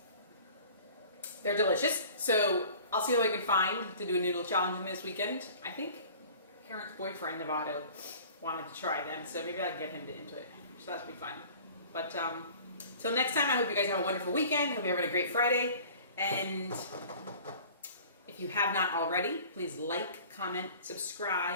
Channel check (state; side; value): inverted; both; correlation -0.46